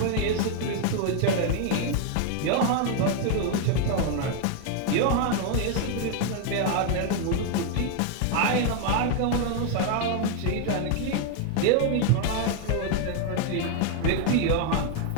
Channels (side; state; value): both; different; correlation 0.01